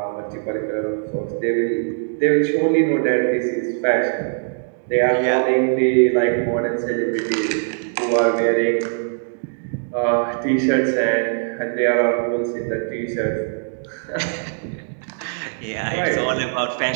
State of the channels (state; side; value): silent; left; digital silence